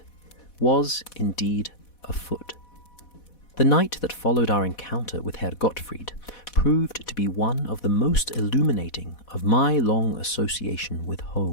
was indeed afoot. The night that followed our encounter with Herr Gottfried proved to be one of the most illuminating of my long association with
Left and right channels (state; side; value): late; right; 4.1 ms